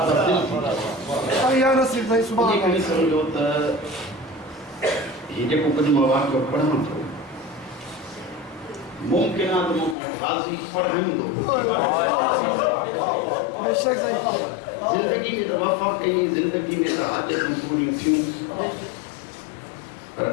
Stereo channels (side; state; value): right; drops out; at 10.0 s